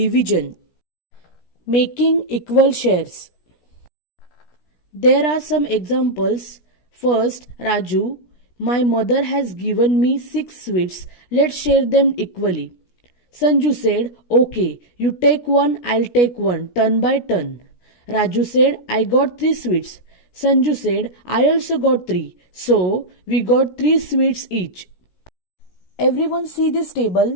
Making equal shares. There are some examples. First, Raju, my mother has given me 6 sweets. Let's share them equally. Sanju said, okay, you take one, I'll take one, turn by turn. Raju said, I got 3 sweets. Sanju said, I also got 3. So, we got 3 sweets each. Everyone see this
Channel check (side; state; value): right; late; 17 ms